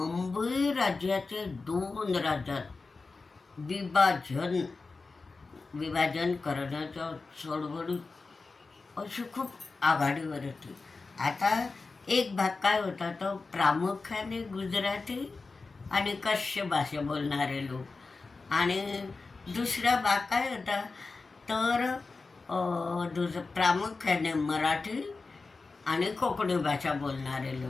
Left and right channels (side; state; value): right; quieter; 4.0 dB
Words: राज्याचे 2 राज्यात विभाजन करण्याच्या चळवळीत अशी खूप आघाडीवर होती. आता एक भाग काय होता, तो प्रामुख्याने गुजराती आणि कच्छ भाषा बोलणारे लोक, आणि दुसरा भाग काय होता तर प्रामुख्याने मराठी आणि कोकणी भाषा बोलणारे